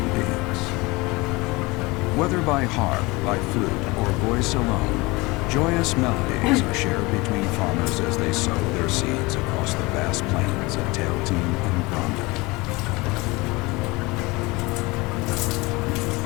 beings. Whether by harp, by flute, or voice alone, joyous melodies are shared between farmers as they sow their seeds across the vast plains of Tailteam and Granda.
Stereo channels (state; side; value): quieter; right; 23.7 dB